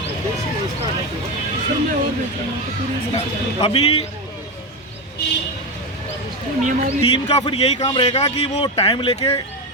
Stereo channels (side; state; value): both; normal; correlation 0.14